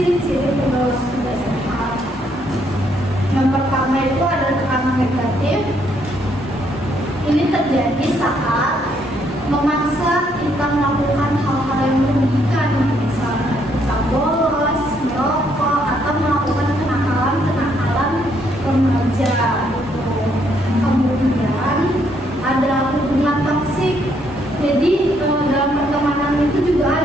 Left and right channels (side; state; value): both; normal; correlation 0.71